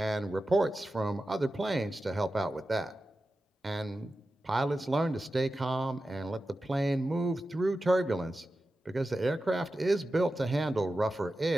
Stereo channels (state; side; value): normal; both; correlation 0.93